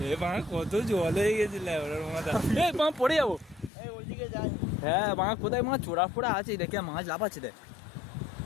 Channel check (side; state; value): right; drops out; at 3.7 s